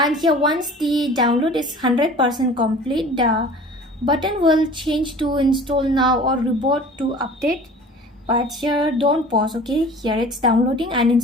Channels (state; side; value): normal; both; correlation 0.44